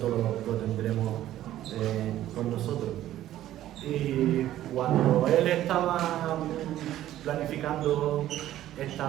lo tendremos con nosotros. Y cuando él estaba planificando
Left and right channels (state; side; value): quieter; left; 13.3 dB